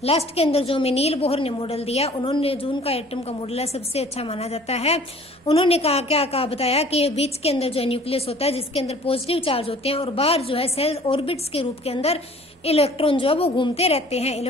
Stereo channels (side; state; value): both; normal; correlation 0.51